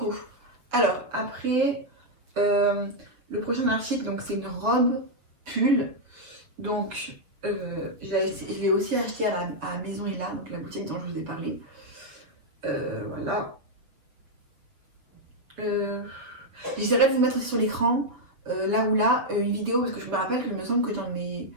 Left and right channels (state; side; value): late; left; 7.1 ms